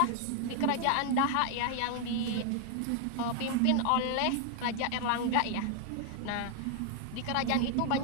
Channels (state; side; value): different; both; correlation 0.00